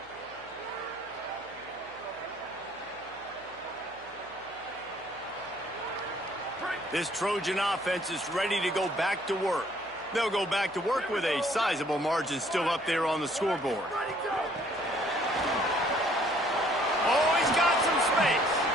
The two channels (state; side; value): noise; left; hum, 29 dB below the sound